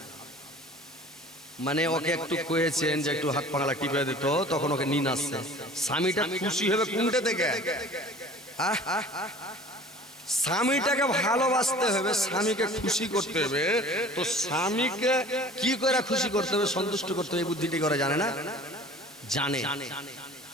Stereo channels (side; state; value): both; normal; correlation 0.45